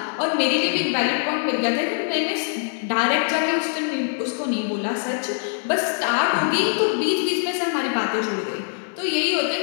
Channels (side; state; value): right; silent; 63 dB below the other